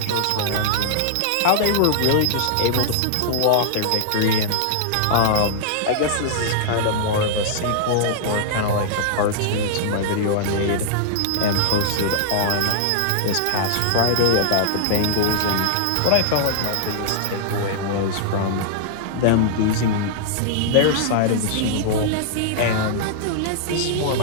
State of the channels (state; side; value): different; both; correlation -0.01